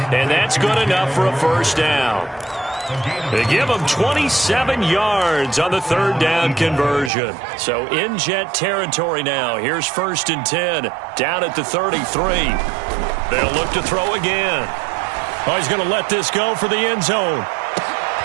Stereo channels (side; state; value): left; drops out; at 7.1 s